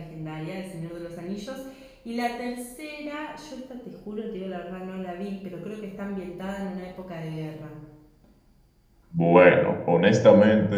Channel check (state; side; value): identical; both; correlation 1.00